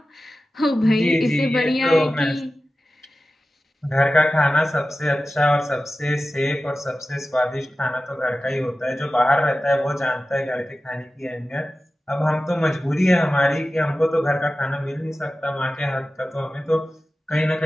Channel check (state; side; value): normal; both; correlation 0.95